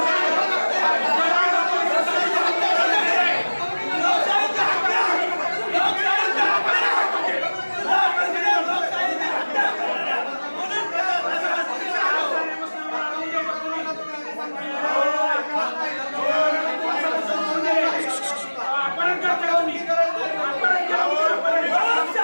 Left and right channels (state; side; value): inverted; both; correlation -1.00